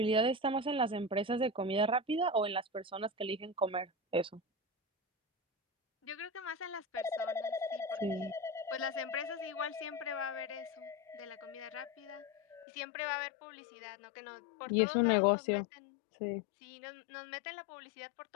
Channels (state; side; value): drops out; right; at 12.7 s